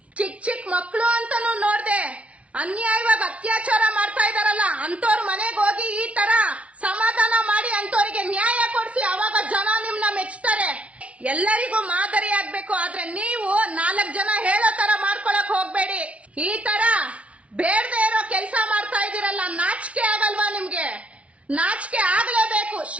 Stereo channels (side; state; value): left; late; 0.063 ms